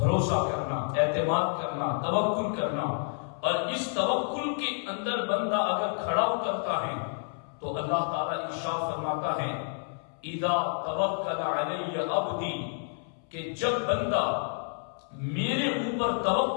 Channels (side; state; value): right; silent; 58 dB below the other